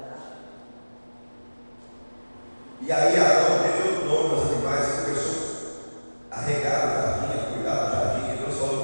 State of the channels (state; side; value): inverted; both; correlation -1.00